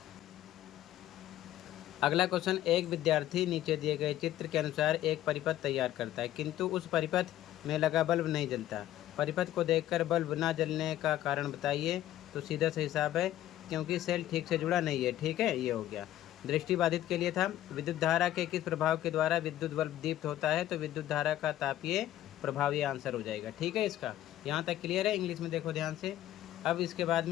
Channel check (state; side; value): quieter; right; 13.2 dB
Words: अगला क्वेश्चन, एक विद्यार्थी नीचे दिए गए चित्र के अनुसार एक परिपथ तैयार करता है, किंतु उस परिपथ में लगा बल्ब नहीं जलता। परिपथ को देखकर बल्ब न जलने का कारण बताइए। तो सीधा सा हिसाब है, क्योंकि सेल ठीक से जुड़ा नहीं है, ठीक है, ये हो गया। दृष्टिबाधित के लिए था, विद्युत धारा के किस प्रभाव के द्वारा विद्युत बल्ब दीप्त होता है? तो विद्युत धारा का तापीय प्रभाव, ये आंसर हो जाएगा, ठीक है इसका। यहाँ तक क्लियर है। इंग्लिश में देखो ध्यान से। अब इसके बाद